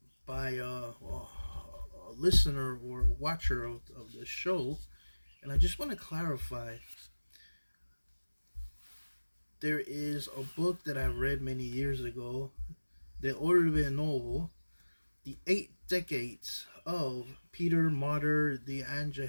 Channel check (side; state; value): both; inverted; correlation -1.00